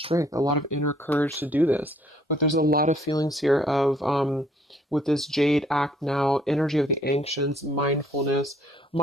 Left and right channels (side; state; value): both; normal; correlation 0.63